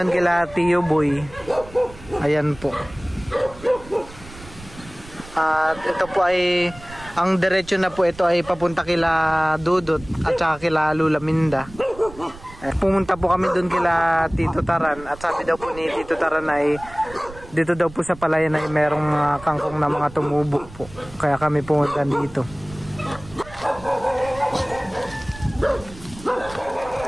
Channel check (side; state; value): right; noise; rumble, 18 dB below the sound